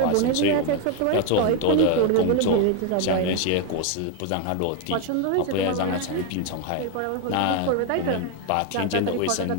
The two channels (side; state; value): both; different; correlation 0.01